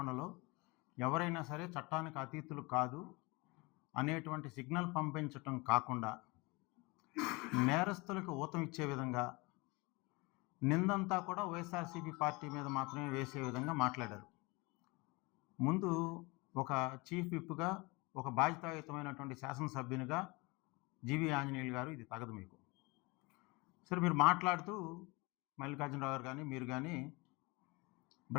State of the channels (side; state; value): right; quieter; 25.7 dB